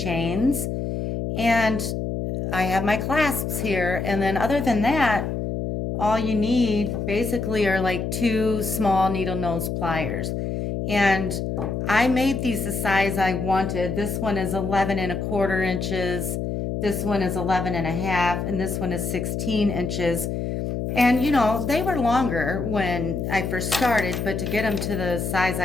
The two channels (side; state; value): left; noise; hum, 3 dB below the sound